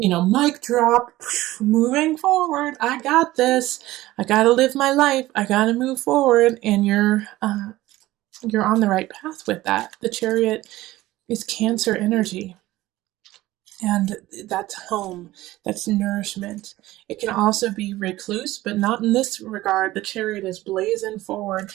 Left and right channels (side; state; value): left; quieter; 17.0 dB